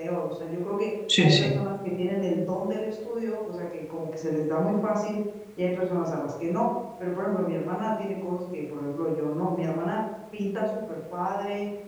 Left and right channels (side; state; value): both; identical; correlation 1.00